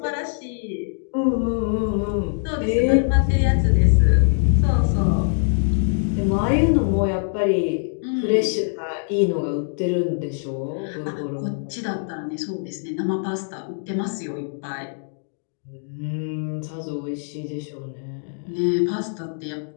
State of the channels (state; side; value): silent; right; digital silence